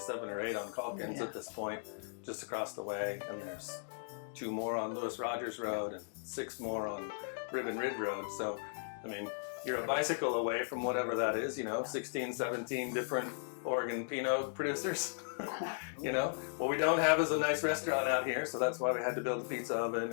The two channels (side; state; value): right; silent; digital silence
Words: or 8 on Calkins at this point, just across the way. And there's 2 more on Lewis Rogers Road and 6 more on Ribbon Ridge Road. So, I mean, you're a bicycle away from whatever that is, you know, 16, 17 different Oregon Pinot producers. You know, what we don't have is a nice restaurant out here, so that's why we had to build the pizza oven